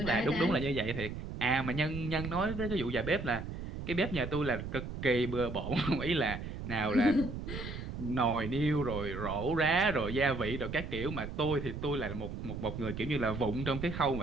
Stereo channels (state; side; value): noise; right; rumble, 7 dB below the sound